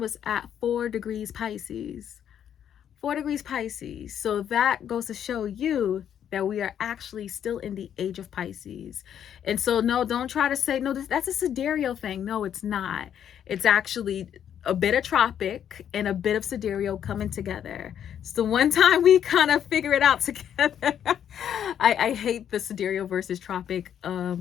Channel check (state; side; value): quieter; right; 9.4 dB